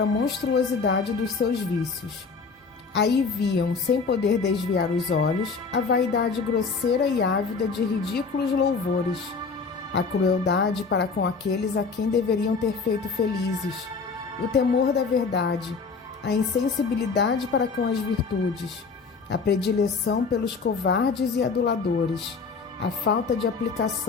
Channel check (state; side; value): quieter; right; 4.8 dB